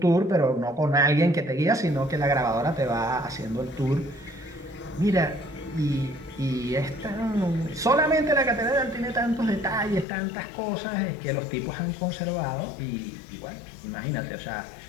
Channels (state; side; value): drops out; right; at 10.1 s